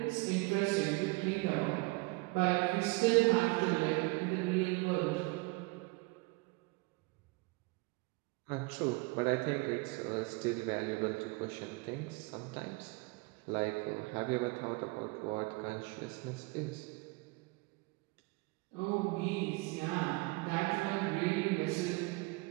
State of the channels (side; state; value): left; quieter; 26.2 dB